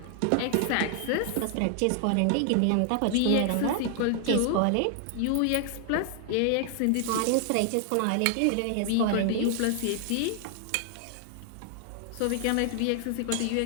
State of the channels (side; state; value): both; different; correlation 0.00